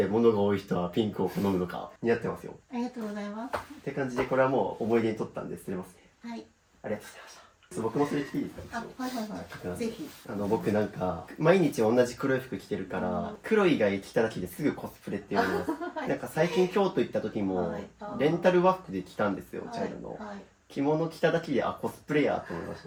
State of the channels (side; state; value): both; identical; correlation 1.00